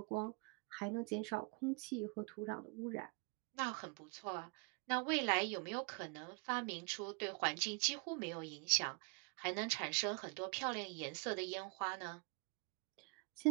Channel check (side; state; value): left; quieter; 33.8 dB